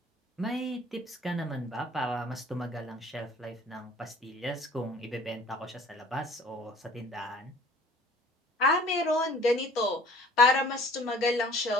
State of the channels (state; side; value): normal; both; correlation 0.51